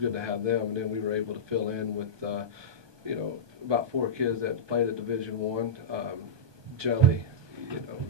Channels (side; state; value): left; late; 1.2 ms